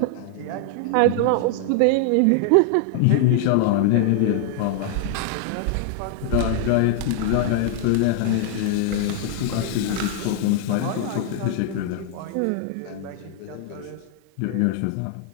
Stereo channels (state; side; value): different; both; correlation 0.00